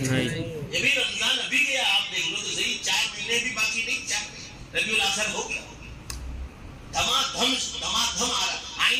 یہ بھی رمضان ابھی گیا، آپ دیکھ لو تو صحیح، 4 مہینے بھی باقی نہیں، 4 ربیع الاخر ہو گیا، دھما دھم آ رہا.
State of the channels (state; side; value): identical; both; correlation 1.00